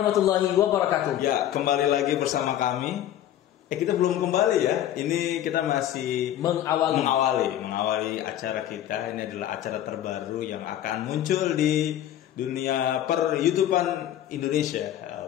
wabarakatuh. Ya, kembali lagi bersama kami. Kita belum kembali ya. Ini kita masih mengawali acara kita. Ini adalah acara terbaru yang akan muncul di dunia per-YouTubean Indonesia.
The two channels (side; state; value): right; quieter; 11.8 dB